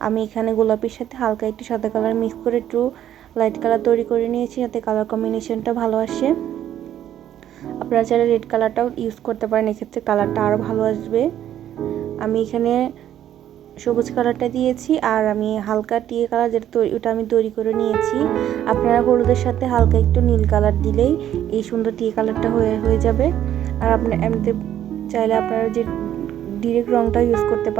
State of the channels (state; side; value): quieter; left; 11.2 dB